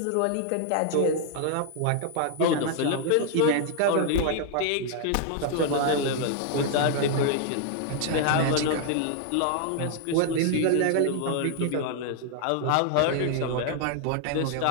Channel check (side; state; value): both; different; correlation 0.00